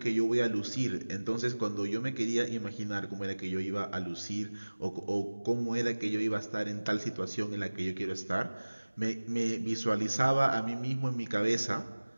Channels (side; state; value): both; inverted; correlation -1.00